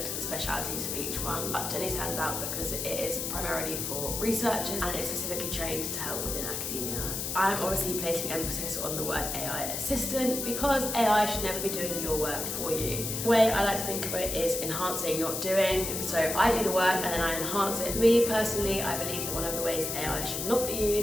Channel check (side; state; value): left; noise; hiss, 3 dB below the sound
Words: at the specialities of each one, but Jenni stands out because it is primarily for researchers and it's specifically trained to help within academia. I'm obviously placing emphasis on the word AI assistant because AI should never be doing your work for you. The way I like to think of it is enhancing, not doing. So I do the work and then I enhance it. Me personally, I believe that one of the ways AI should not be